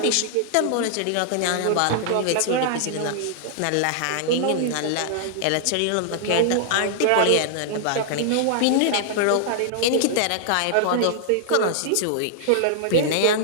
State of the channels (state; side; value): different; both; correlation -0.01